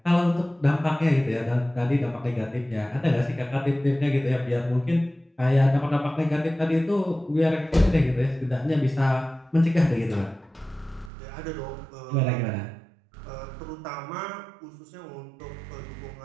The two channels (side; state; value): left; drops out; at 11.1 s